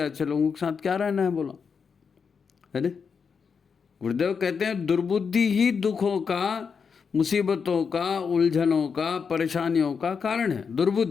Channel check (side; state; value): right; quieter; 6.0 dB